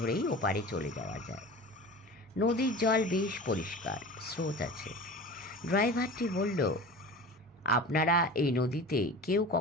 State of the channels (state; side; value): normal; both; correlation 0.35